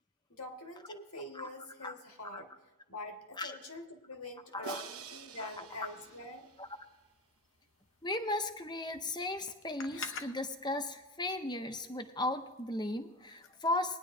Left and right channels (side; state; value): both; normal; correlation 0.25